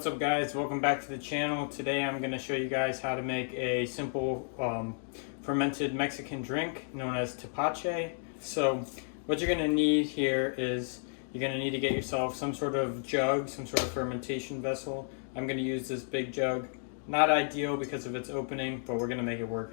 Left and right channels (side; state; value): right; silent; digital silence